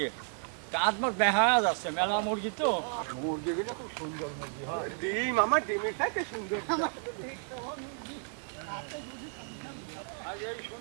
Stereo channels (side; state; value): left; silent; 56 dB below the other